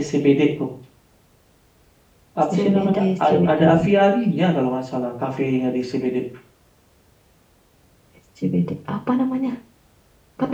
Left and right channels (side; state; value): both; identical; correlation 1.00